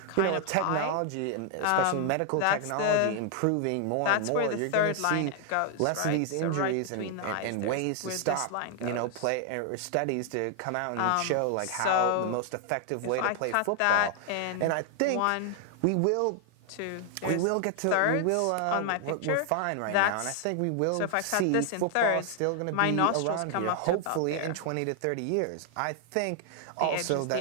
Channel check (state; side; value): different; both; correlation 0.00